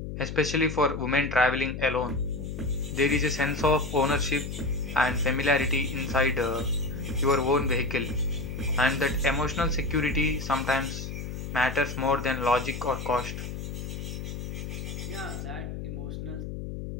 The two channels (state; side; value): noise; left; hum, 7 dB below the sound